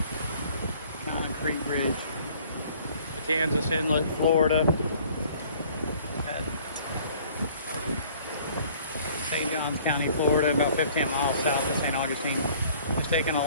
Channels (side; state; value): both; inverted; correlation -0.55